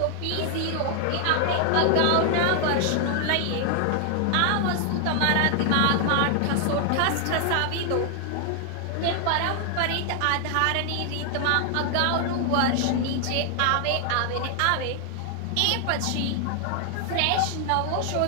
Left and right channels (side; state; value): both; different; correlation 0.00